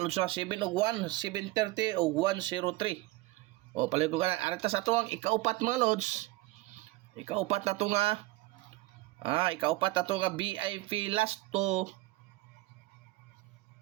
ha 7 og 1, 730 og 103. O palihog ko kana arita sa tuwang ikaupat mga lods. Ikaupat na to nga ikaupat na to nga VIP last to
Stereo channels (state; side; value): quieter; left; 19.3 dB